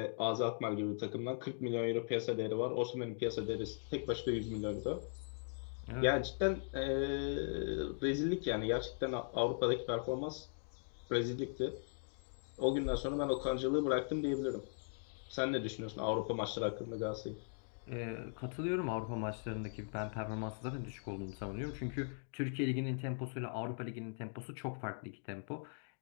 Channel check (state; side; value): silent; right; digital silence